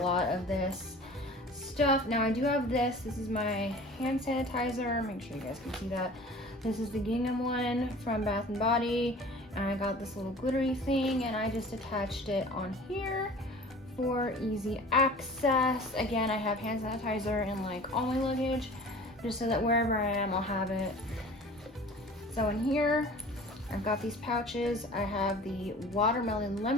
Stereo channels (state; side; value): normal; both; correlation 0.43